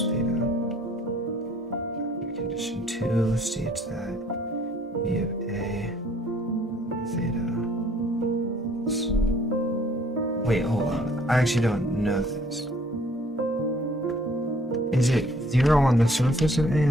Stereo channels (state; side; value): normal; both; correlation 0.59